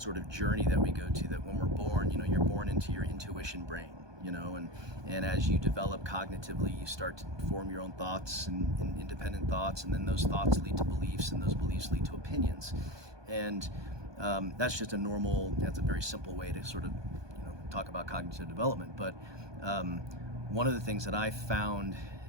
of journey that we go to, that when we're born, you're born into your intuition brain, and as you develop cognitively, you start to form your own thoughts and independent thoughts, and then those thoughts lead to beliefs, and those beliefs lead to opinions. And that's just that's a very simple way to sort of talk about cognitive development. But one of the things that I found,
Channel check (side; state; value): left; late; 1.2 ms